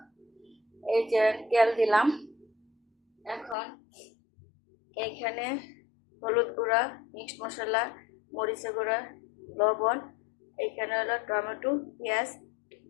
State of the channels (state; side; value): drops out; right; at 3.6 s